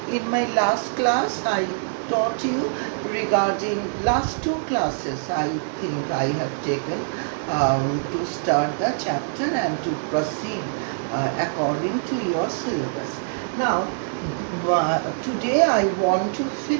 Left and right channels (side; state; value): left; silent; 63 dB below the other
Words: In my last class I taught you regarding last two classes I think I have taken to start the chapter and to proceed according to your syllabus. Now today I want to